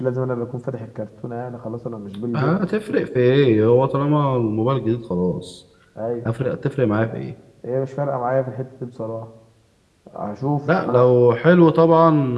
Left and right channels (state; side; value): identical; both; correlation 1.00